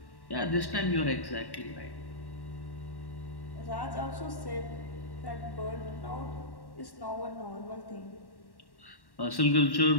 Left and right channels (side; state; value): right; late; 1.1 ms